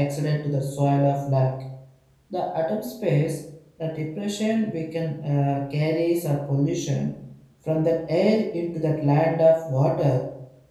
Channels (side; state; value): both; identical; correlation 1.00